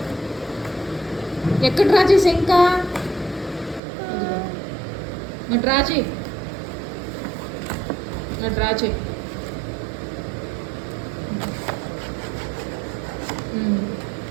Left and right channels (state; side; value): drops out; left; at 3.8 s